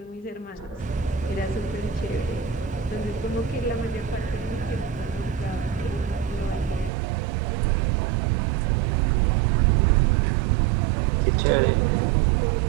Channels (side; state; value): left; drops out; at 6.9 s